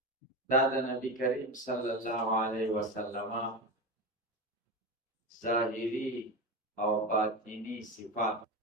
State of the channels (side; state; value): both; normal; correlation 0.20